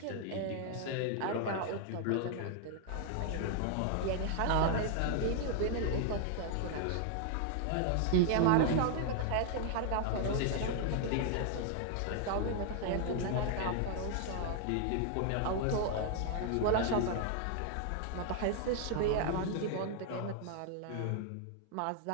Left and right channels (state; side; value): different; both; correlation 0.00